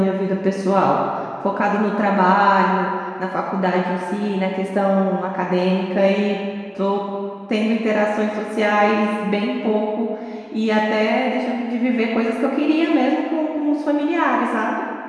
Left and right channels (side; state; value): both; identical; correlation 1.00